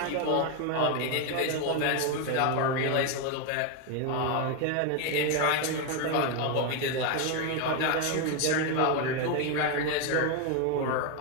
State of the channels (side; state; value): both; different; correlation 0.01